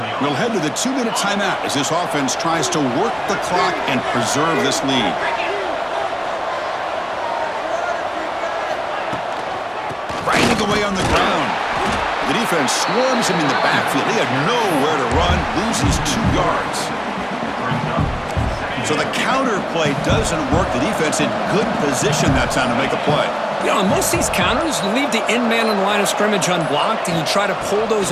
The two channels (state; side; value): identical; both; correlation 1.00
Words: We'll head to the 2-minute timeout as this offense tries to work the clock and preserve this lead. Grinding away on the ground. The defense swarms him in the backfield. He had nowhere to run, loses 2 yards. So the counter play doesn't work. The defense in good position that time to make a play. You know, on most of these counters, you leave the end man on the line of scrimmage unblocked, and you try to pull those